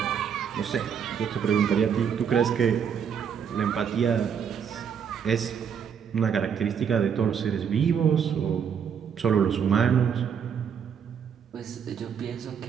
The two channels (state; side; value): quieter; left; 7.5 dB